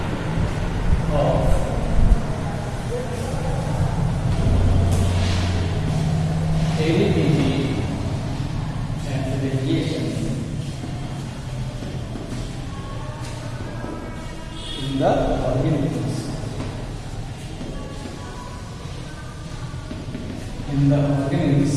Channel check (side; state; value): both; identical; correlation 1.00